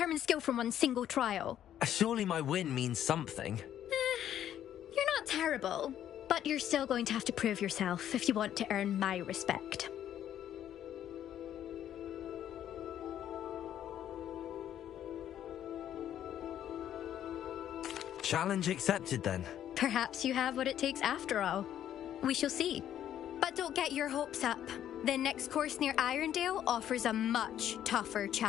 skill from one single trial. Surely my win means something. You're not terrible, but you're still going to have to prove yourself if you want to earn my respect. Challenge accepted, then. Perhaps you have what it takes after all. We shall see. But don't get your hopes up. The next course near Irondale offers a much tougher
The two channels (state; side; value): quieter; right; 10.8 dB